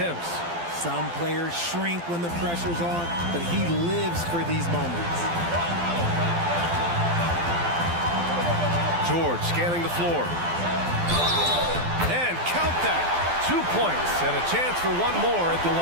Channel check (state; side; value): late; left; 12 ms